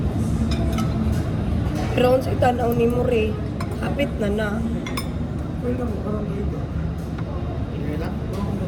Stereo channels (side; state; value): both; identical; correlation 1.00